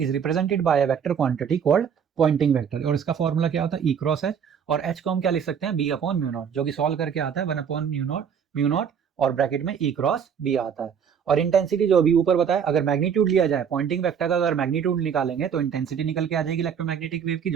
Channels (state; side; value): quieter; left; 7.5 dB